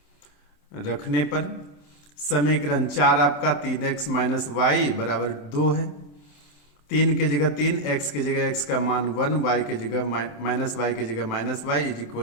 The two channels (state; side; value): late; right; 27 ms